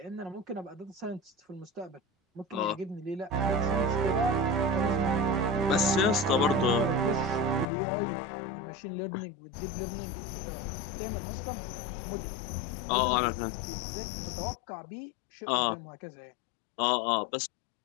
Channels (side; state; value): right; drops out; at 7.7 s